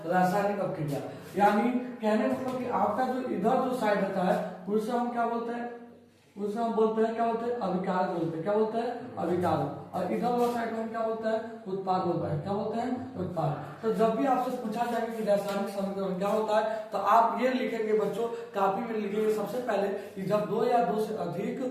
रासायनिक अपक्रिया। यानी कहने मतलब कि आपका जो इधर जो साइड होता है उसे हम क्या बोलते हैं? उसे हम बोलते हैं क्या बोलते हैं? अभिकारक बोलते हैं। क्या बोलते हैं? अभिकारक। और इधर वाला साइड में हम क्या बोलते हैं? उत्पाद बोलते हैं। क्या बोलते हैं? उत्पाद। तो जब भी आपसे पूछा जाएगा कि रासायनिक समीकरण क्या होता है तो आप ये लिखेंगे बच्चों, काफी में लिखेंगे सबसे पहले कि जब 2 या 2 से अधिक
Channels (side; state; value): both; identical; correlation 1.00